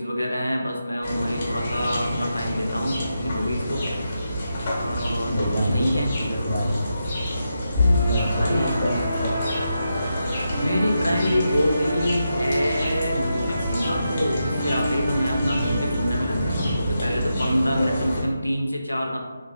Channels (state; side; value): inverted; both; correlation -0.86